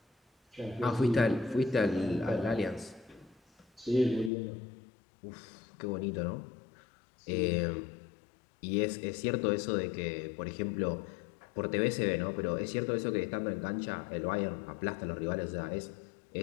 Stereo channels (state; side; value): drops out; right; at 4.3 s